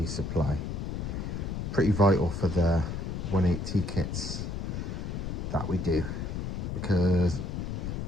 supply. Pretty vital for the 180 kits that we do, because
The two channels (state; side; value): noise; left; rumble, 4 dB below the sound